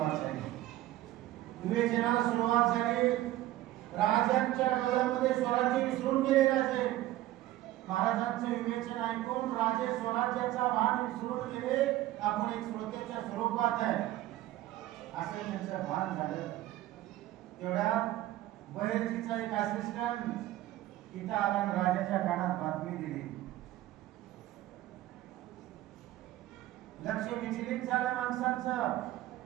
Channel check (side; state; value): left; quieter; 15.2 dB